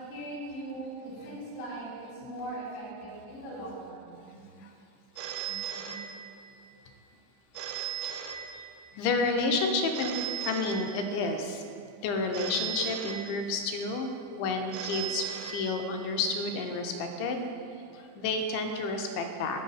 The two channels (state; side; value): late; right; 15 ms